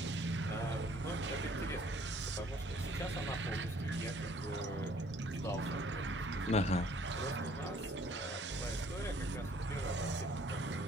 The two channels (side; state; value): both; normal; correlation 0.59